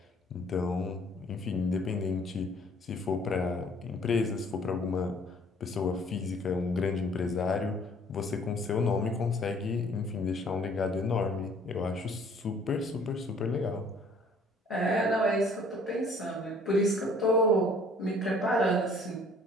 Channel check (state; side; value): normal; both; correlation 0.56